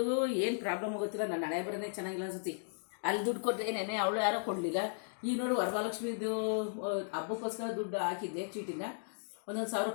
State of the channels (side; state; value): right; silent; digital silence